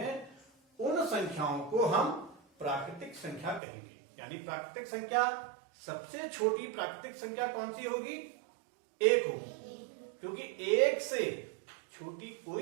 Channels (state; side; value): drops out; left; at 3.6 s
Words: उन संख्याओं को हम प्राकृतिक संख्या कहेंगे। यानी प्राकृतिक संख्या, सबसे छोटी प्राकृतिक संख्या कौन सी होगी? एक होगी, क्योंकि एक से छोटी